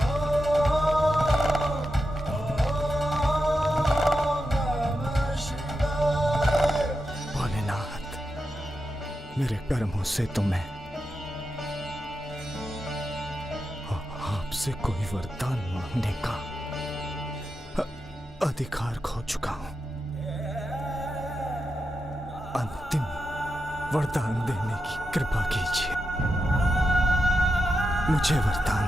मेरे कर्मों से तो मैं आपसे कोई वरदान मांगने का अधिकार खो चुका हूं। अंतिम वरदान देने की कृपा कीजिए, मुझे वरदान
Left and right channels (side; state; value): both; normal; correlation 0.88